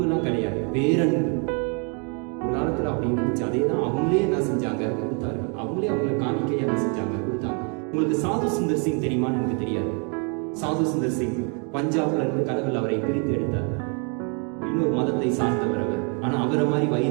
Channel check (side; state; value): left; quieter; 37.6 dB